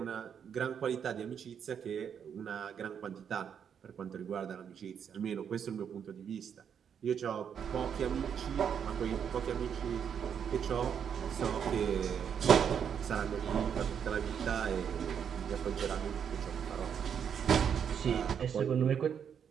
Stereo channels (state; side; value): quieter; left; 7.9 dB